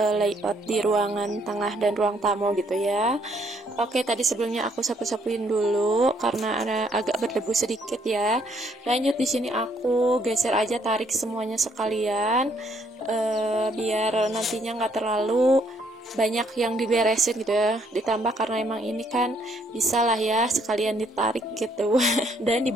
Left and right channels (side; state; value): both; normal; correlation 0.68